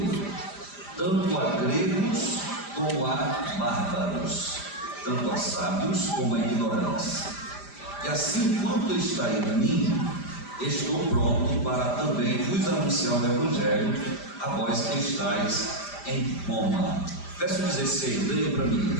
tanto a gregos como a bárbaros, tanto a sábios como a ignorantes. E assim quanto está em mim, estou pronto para também vos anunciar o Evangelho a vós que estáis em Roma. Verso 16, leia para mim,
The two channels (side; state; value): right; late; 5.0 ms